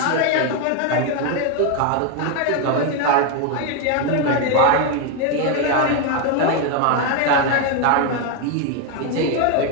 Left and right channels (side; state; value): both; different; correlation 0.01